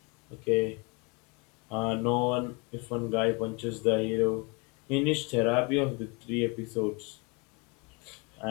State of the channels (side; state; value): right; quieter; 30.6 dB